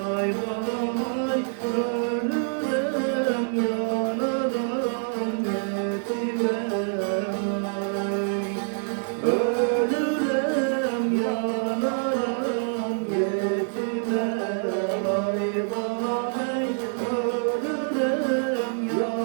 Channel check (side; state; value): left; silent; 61 dB below the other